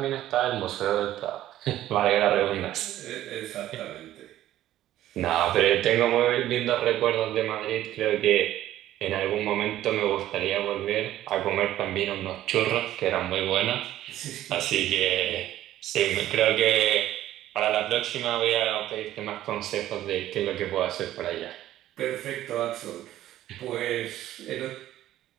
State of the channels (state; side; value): quieter; left; 13.4 dB